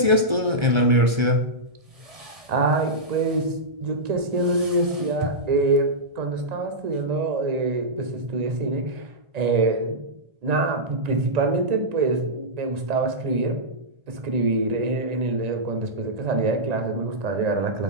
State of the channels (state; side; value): late; left; 1.3 ms